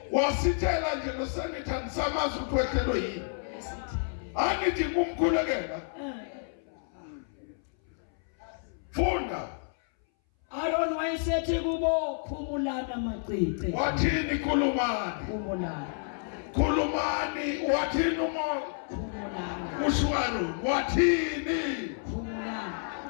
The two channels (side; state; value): right; silent; 58 dB below the other